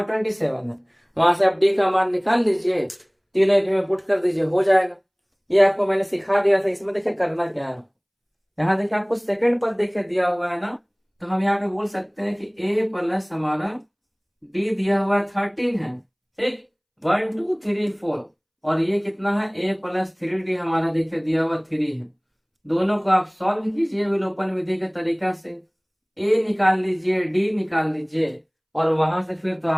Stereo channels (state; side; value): identical; both; correlation 1.00